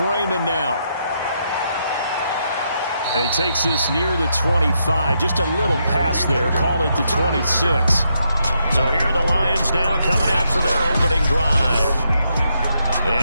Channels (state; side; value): inverted; both; correlation -0.80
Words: Raymond now. And he takes this near the 25, just a little past there, call it the 26. So here are the Lions now coming out for their opening drive.